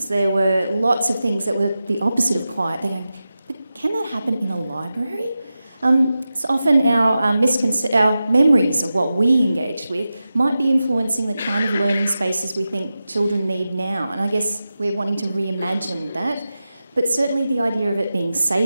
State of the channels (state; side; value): inverted; both; correlation -0.93